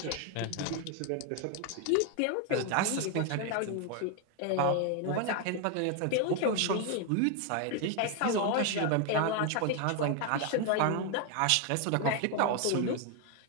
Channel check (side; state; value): both; different; correlation 0.01